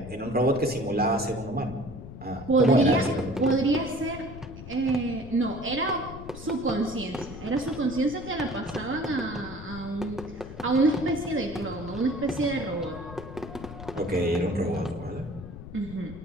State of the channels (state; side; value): noise; left; rumble, 13 dB below the sound